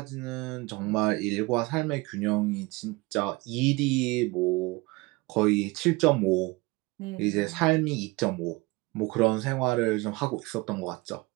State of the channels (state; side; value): quieter; left; 23.7 dB